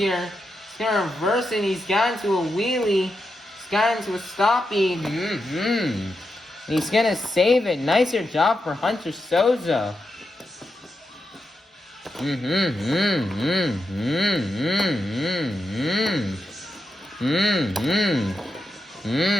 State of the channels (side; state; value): both; normal; correlation 0.86